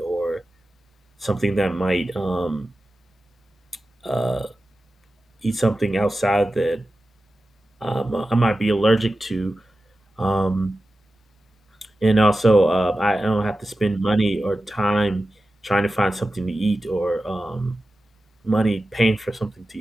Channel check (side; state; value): both; normal; correlation 0.94